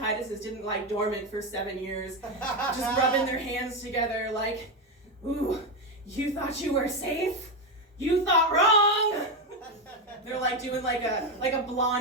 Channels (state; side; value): normal; both; correlation 0.10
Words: didn't lie dormant for 7 years, just rubbing their hands together like, ooh, you thought you were safe? You thought wrong! They're doing like a